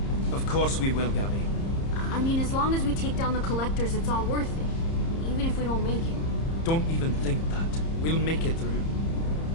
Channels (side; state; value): right; late; 30 ms